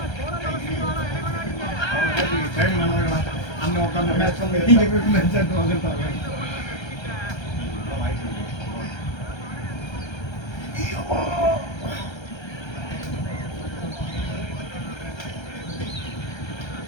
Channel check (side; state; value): right; late; 1.3 ms